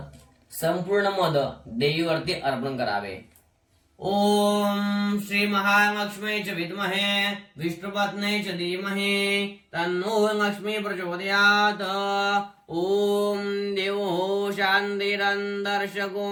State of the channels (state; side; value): identical; both; correlation 1.00